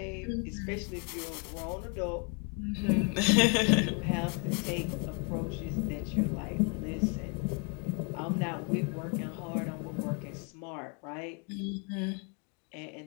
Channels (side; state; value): right; quieter; 37.0 dB